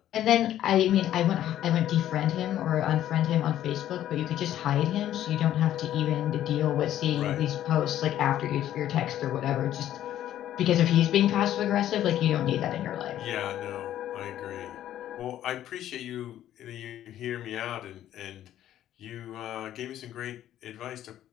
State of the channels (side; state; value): right; quieter; 12.0 dB